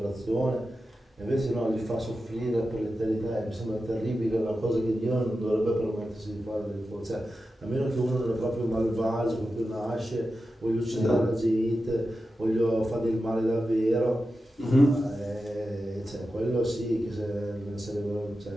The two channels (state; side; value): normal; both; correlation 0.92